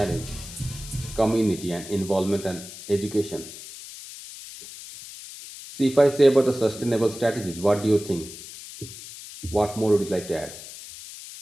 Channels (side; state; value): left; noise; hiss, 14 dB below the sound